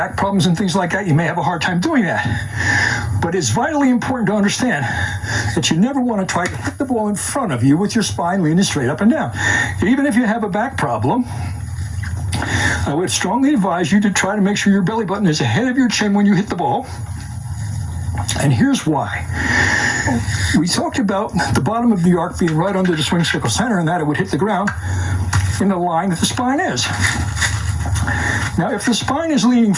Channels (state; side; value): identical; both; correlation 1.00